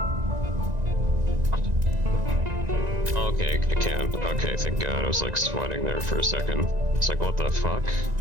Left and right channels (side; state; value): left; late; 1.9 ms